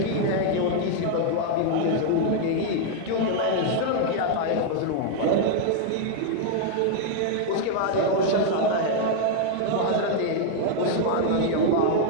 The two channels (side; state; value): both; different; correlation 0.00